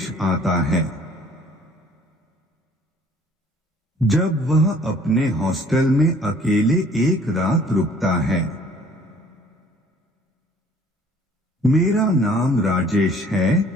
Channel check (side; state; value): both; normal; correlation 0.55